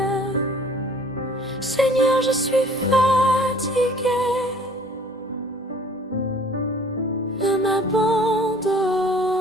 Seigneur, je suis fatiguée. Ne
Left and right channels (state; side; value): normal; both; correlation 0.53